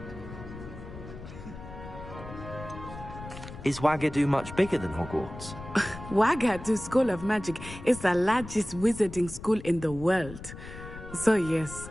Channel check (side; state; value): left; noise; rumble, 13 dB below the sound